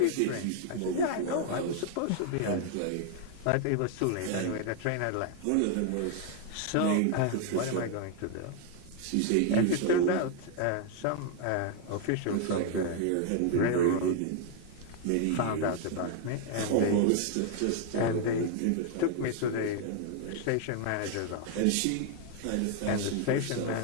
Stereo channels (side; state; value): both; different; correlation 0.00